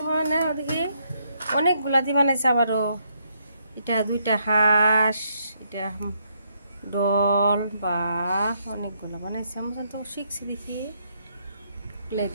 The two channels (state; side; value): inverted; both; correlation -0.74